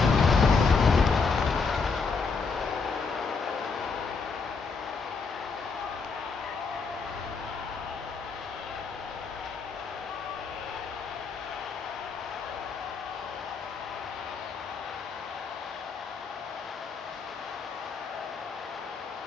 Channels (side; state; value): right; quieter; 4.9 dB